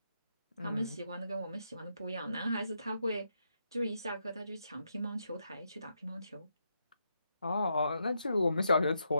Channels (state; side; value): inverted; both; correlation -0.81